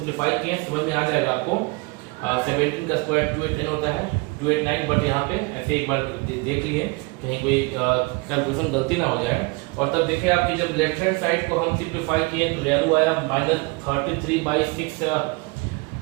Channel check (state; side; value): quieter; left; 27.3 dB